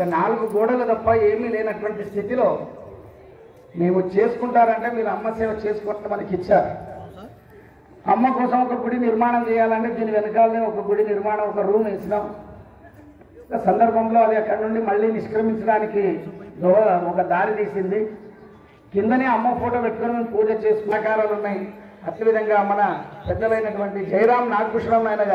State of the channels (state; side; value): identical; both; correlation 1.00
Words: 4 గోడలు తప్ప ఏమీ లేనటువంటి స్థితిలో మేము చేసుకుంటారంటే మీరు అమ్మ సేవ చేసుకుంటే మనకి ఇచ్చారు. అమ్మ కోసం ఒక గుడి నిర్మాణం చేయాలంటే దీని వెనకాలనే ఒక గుడి నిర్మాణం, ఒక రూమ్ వేసినాం. సందర్భంలో అది అక్కడి నుండి మళ్ళీ నిష్క్రమించడానికి ఒక దారి తీసింది. కిందనే అమ్మ ఫోటో పెట్టుకుని మేము పూజ చేసుకునే ఆకారాలు ఉన్నాయి. అదేవిధంగా మన పెద్దలైనటువంటి జయరాం నాగభూషణం నాయన